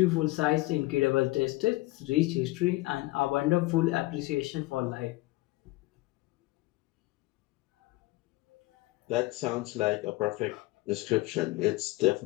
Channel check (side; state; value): right; quieter; 20.3 dB